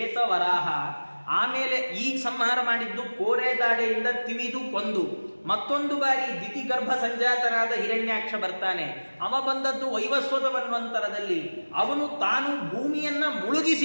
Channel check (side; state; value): both; inverted; correlation -1.00